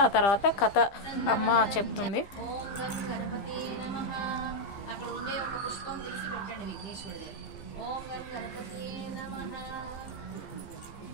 ఆ తర్వాత కథ అమ్మ చెప్తుంది. అక్కడ ఉండే ఒక పుష్పం తీసి పెట్టండి విఘ్నేశ్వరుడి. ఓం గం గణపతి నమః.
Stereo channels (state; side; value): late; right; 15 ms